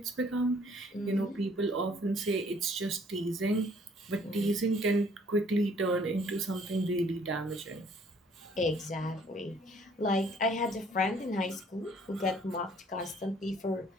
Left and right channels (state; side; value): normal; both; correlation 0.60